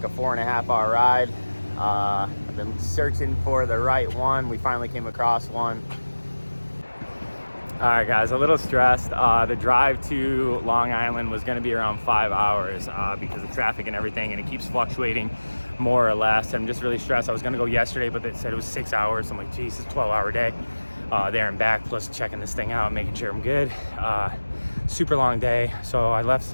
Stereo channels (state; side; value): inverted; both; correlation -1.00